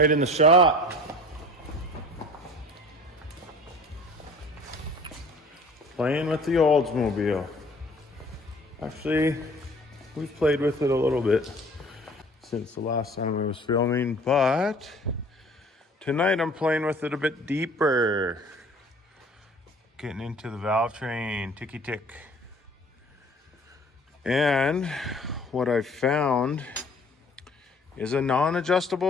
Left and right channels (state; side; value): normal; both; correlation 0.49